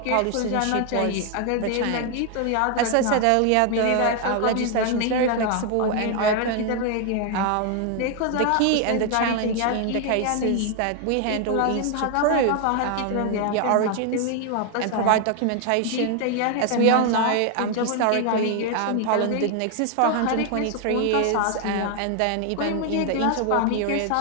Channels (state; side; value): different; both; correlation 0.00